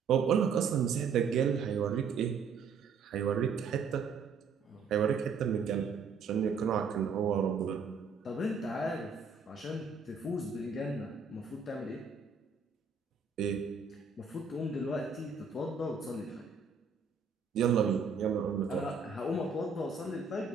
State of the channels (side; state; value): left; quieter; 5.3 dB